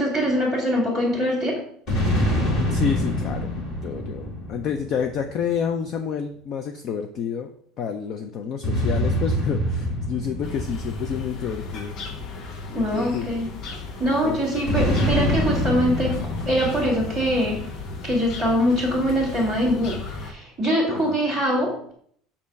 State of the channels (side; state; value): both; normal; correlation 0.52